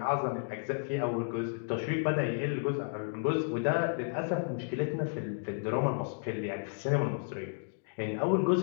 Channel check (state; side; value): silent; right; digital silence